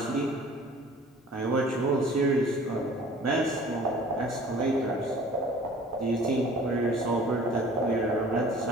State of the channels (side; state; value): both; normal; correlation 0.48